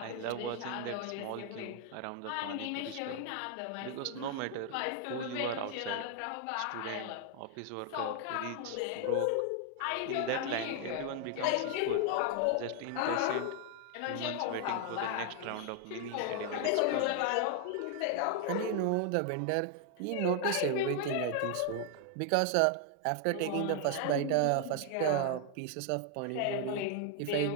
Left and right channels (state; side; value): different; both; correlation 0.00